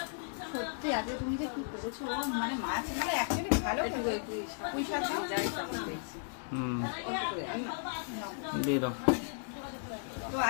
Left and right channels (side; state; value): right; silent; digital silence